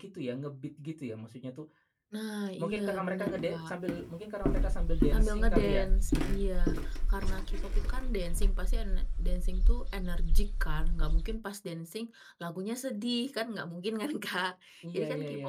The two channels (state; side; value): identical; both; correlation 1.00